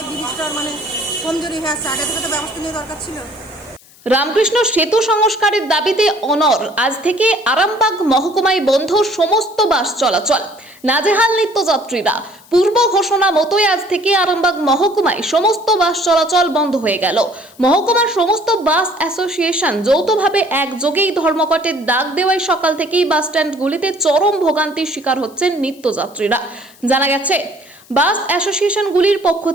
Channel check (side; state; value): left; noise; hiss, 26 dB below the sound